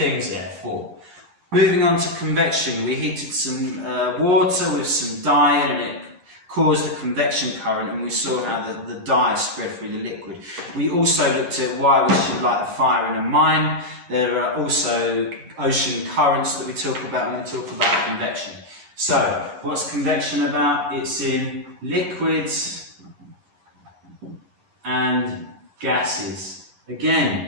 there, 4. Moving on to convection, we heated some water with some dye, and it caused a convection current, and we saw how the dye spread through the liquid. We also looked at why we should light a fire in a mine. There are also ocean currents that we talk about when we talk about convection. So, what's convection about? It's in liquids and gases.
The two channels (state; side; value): late; left; 11 ms